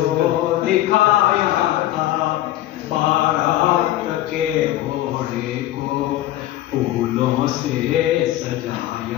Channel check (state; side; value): quieter; right; 14.4 dB